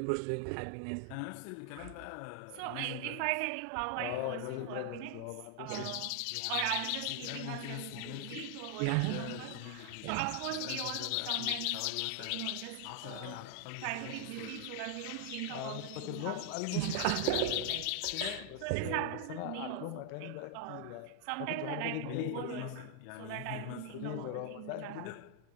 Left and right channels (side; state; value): both; different; correlation 0.00